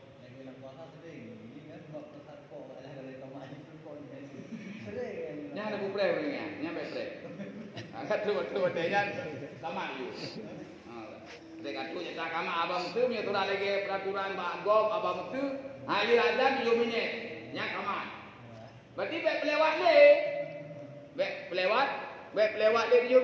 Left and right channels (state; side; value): identical; both; correlation 1.00